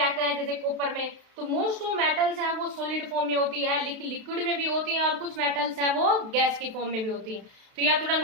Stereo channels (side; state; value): left; late; 32 ms